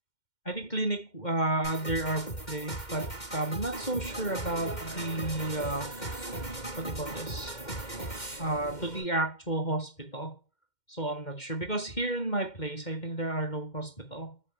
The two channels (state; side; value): late; right; 2.1 ms